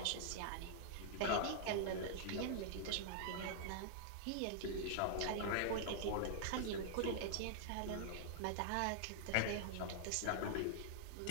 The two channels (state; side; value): different; both; correlation -0.01